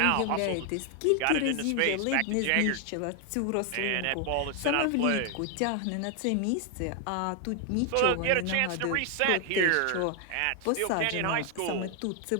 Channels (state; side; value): different; both; correlation 0.00